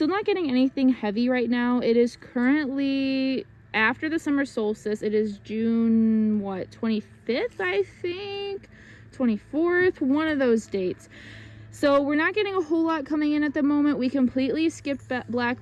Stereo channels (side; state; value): both; identical; correlation 1.00